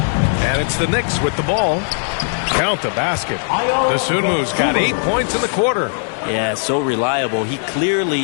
And it's the Knicks with the ball. Count the basket. Dosunmu's got 8 points in the quarter. Yeah, so reliable. He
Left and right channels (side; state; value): right; silent; digital silence